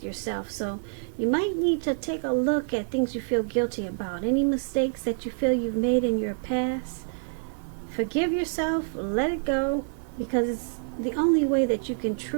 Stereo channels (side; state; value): left; silent; digital silence